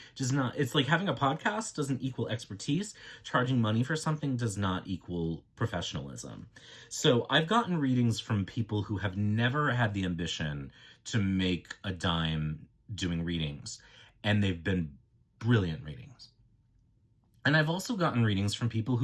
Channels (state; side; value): identical; both; correlation 1.00